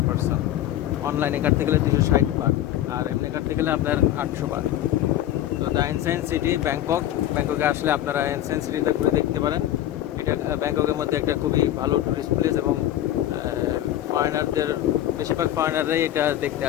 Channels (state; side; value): quieter; right; 12.8 dB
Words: পারসন। অনলাইনে কাটতে গেলে 260 বাদ, আর এমনি কাটতে গেলে আপনার 800 বাদ। তো দ্য এনসিয়েন্ট সিটি ব্যাংককে আসলে আপনারা এনসিয়েন্ট সিটিতে ঘুরে দেখতে পারেন। এটা ব্যাংককের মধ্যে একটা খুবই ভালো টুরিস্ট প্লেস, এবং ফরেনারদের, বেশিরভাগ ফরেনাররাই এটা দেখতে